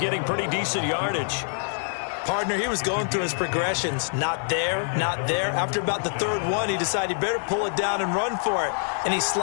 pretty decent yardage. Partner, he was going through his progressions. Not there, not there. After about the third one, he decided he better pull it down and run for it. And he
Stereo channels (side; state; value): right; silent; 61 dB below the other